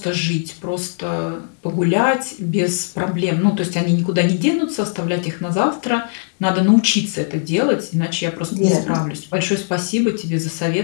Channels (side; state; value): right; silent; 66 dB below the other